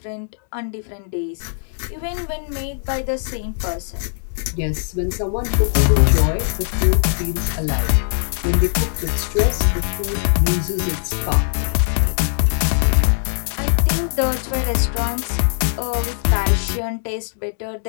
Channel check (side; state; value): right; silent; digital silence